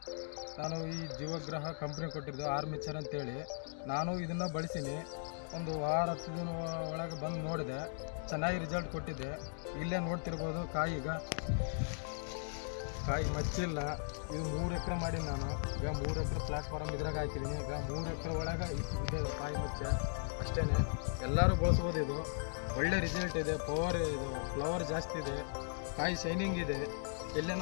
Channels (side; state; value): right; silent; digital silence